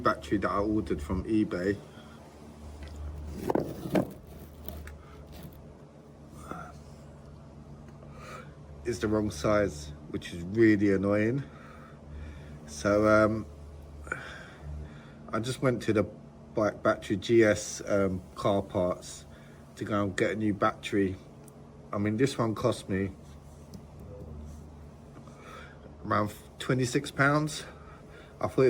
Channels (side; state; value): both; identical; correlation 1.00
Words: that I ordered from eBay is the wrong size, which is really annoying. So I just went to the bike battery GS car parts to go and get a new battery. I mean, this one cost me around £26. I thought